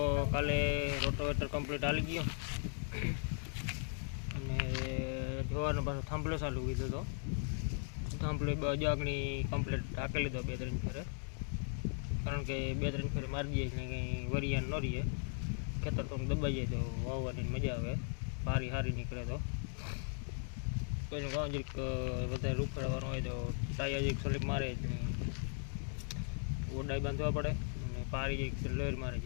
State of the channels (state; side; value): silent; right; 53 dB below the other